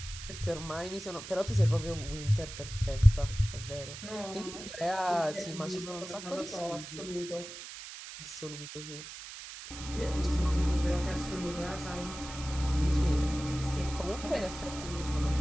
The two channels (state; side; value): noise; right; hiss, 11 dB below the sound